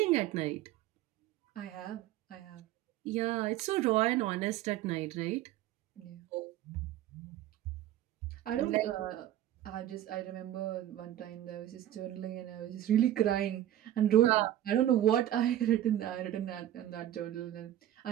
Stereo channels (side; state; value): left; quieter; 12.6 dB